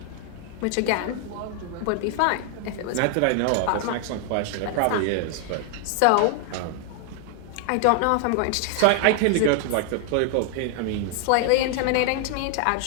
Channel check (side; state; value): both; different; correlation 0.00